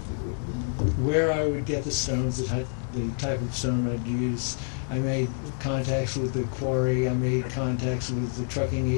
where I would get the stones, the type of stone I'd use. I made contacts with the quarry. I made contacts with the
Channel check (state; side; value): silent; right; 60 dB below the other